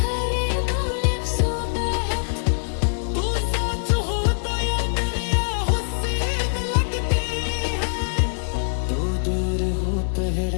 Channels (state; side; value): silent; right; digital silence